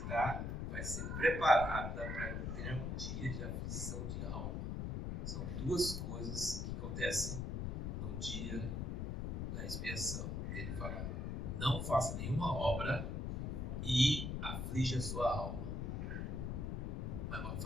vai ser preparada para ter um dia de aflição de alma. São duas coisas que acontecem no dia da expiação. Ele fala, não faça nenhuma obra e aflige a sua alma. Mas não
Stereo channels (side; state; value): left; noise; rumble, 2 dB below the sound